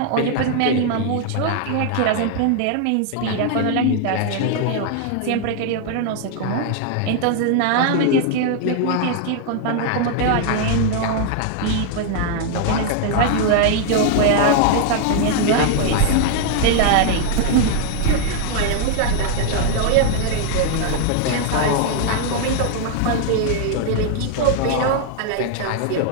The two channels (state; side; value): different; both; correlation 0.00